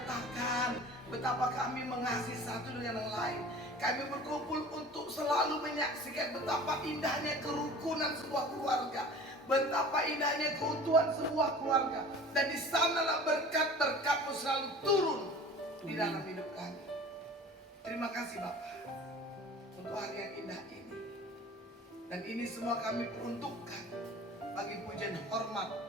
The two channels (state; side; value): normal; both; correlation 0.42